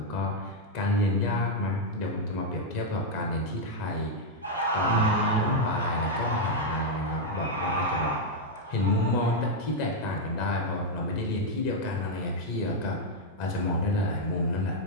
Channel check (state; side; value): normal; both; correlation -0.01